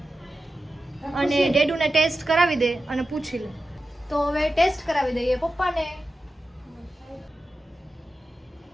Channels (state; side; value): normal; both; correlation 0.92